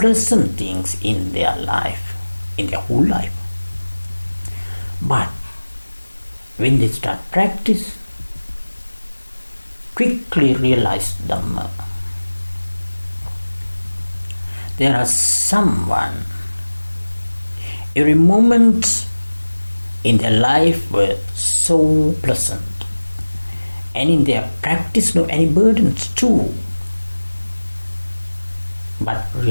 things in their life, in their whole life. But when they start practice, quickly realize Dhamma. There are someone, every moment in their life were so pleasant, and in their practice no any burdens too. But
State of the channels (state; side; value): inverted; both; correlation -1.00